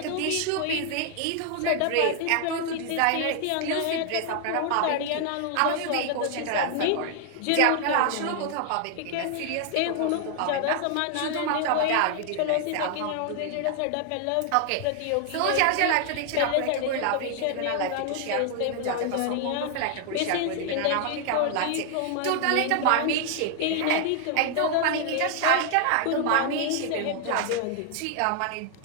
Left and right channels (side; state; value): both; different; correlation 0.00